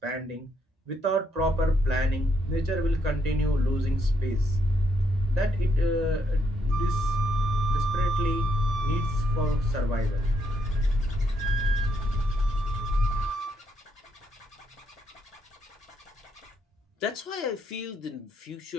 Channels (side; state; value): both; normal; correlation 0.75